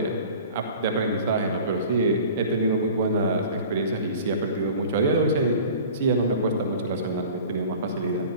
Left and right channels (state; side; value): inverted; both; correlation -0.42